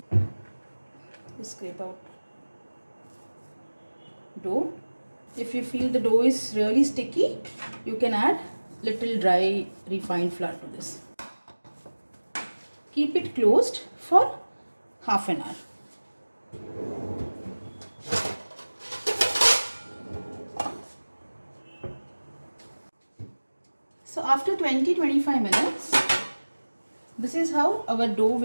Scrape out dough. If you feel the dough is really sticky, you can add little dry refined flour to this. Keep it closed for half an hour. So after 20-25 minutes, this is how our dough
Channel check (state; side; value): inverted; both; correlation -1.00